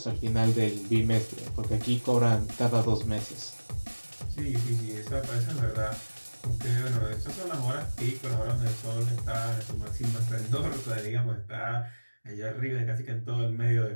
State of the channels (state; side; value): inverted; both; correlation -1.00